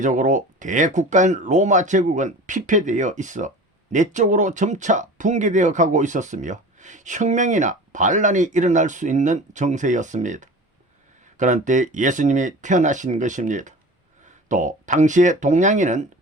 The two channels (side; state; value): both; normal; correlation 0.37